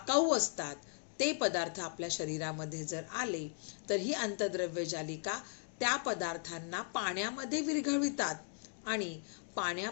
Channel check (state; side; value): silent; right; 53 dB below the other